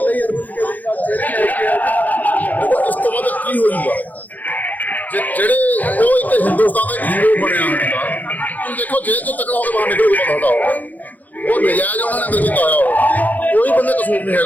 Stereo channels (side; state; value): right; late; 0.081 ms